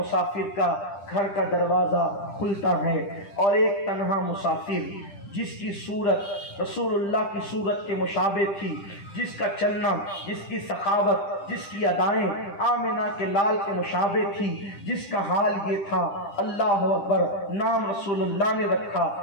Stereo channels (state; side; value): late; right; 10 ms